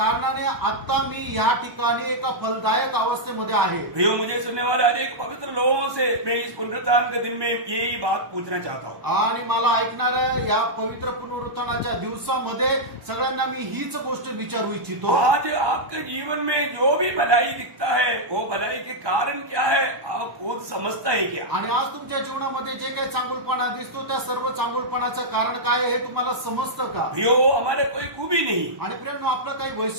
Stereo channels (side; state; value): left; late; 1.1 ms